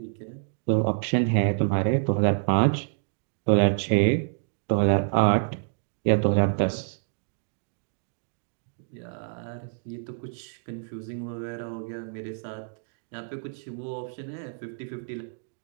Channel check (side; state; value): left; silent; digital silence